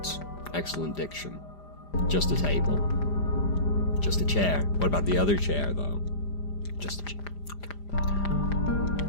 Excellent diction. Just a table. Just a chair. What about the other chair, though? Just a chair. Okay.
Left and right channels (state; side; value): late; right; 5.0 ms